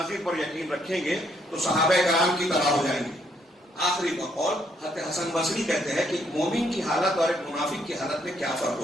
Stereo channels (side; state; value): both; normal; correlation 0.71